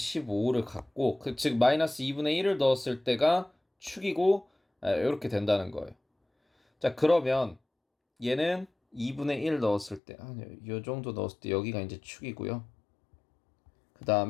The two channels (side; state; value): right; drops out; at 10.0 s